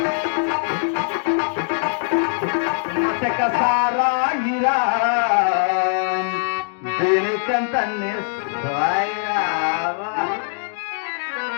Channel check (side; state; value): right; silent; 65 dB below the other